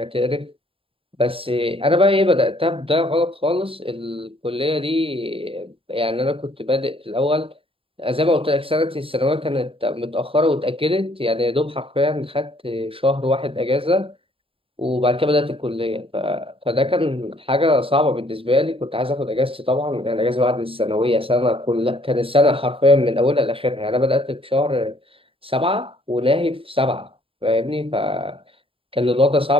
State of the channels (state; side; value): late; left; 0.27 ms